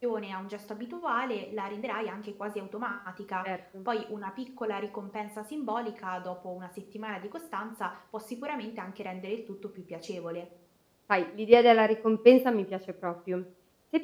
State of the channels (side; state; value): both; identical; correlation 1.00